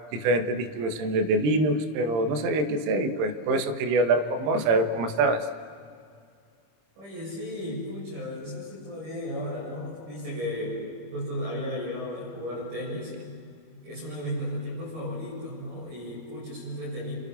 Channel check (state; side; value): late; left; 26 ms